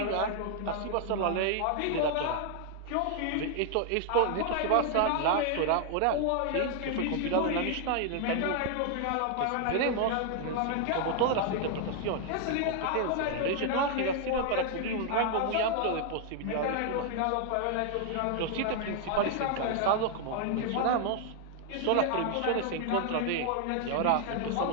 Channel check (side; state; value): both; different; correlation 0.00